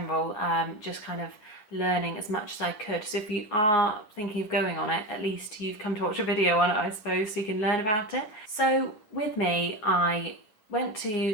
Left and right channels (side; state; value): right; late; 9.6 ms